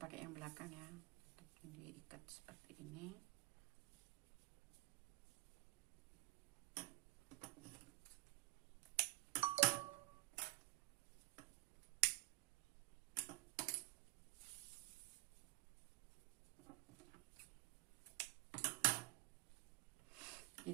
pakai yang belakang ya, tetap diikat seperti ini.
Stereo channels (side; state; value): left; quieter; 20.4 dB